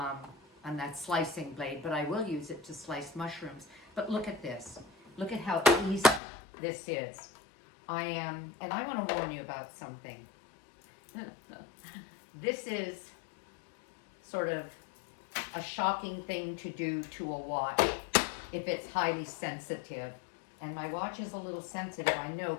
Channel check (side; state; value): right; drops out; at 6.2 s